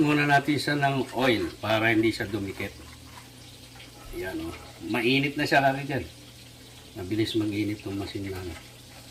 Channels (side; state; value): both; identical; correlation 1.00